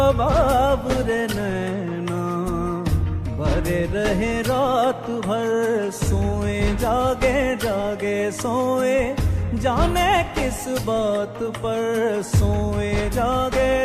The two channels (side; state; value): both; identical; correlation 1.00